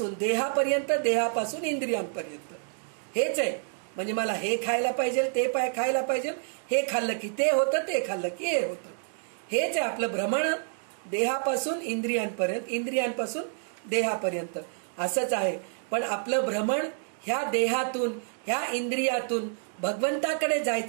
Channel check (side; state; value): left; silent; digital silence